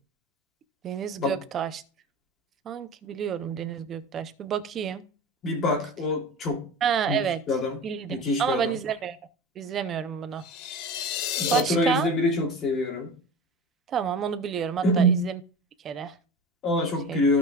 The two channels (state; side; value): normal; both; correlation 0.32